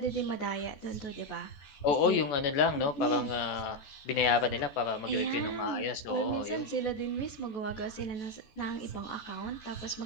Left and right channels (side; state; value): right; late; 14 ms